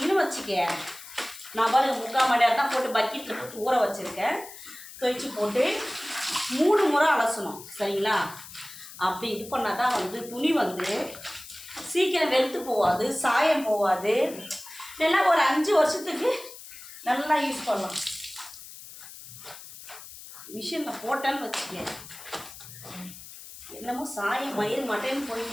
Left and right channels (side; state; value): left; noise; hiss, 15 dB below the sound